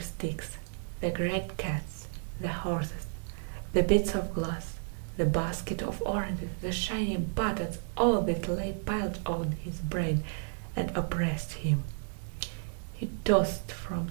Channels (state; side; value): silent; left; digital silence